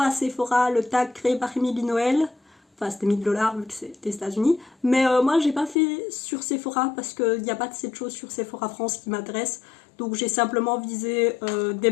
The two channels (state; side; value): drops out; right; at 5.8 s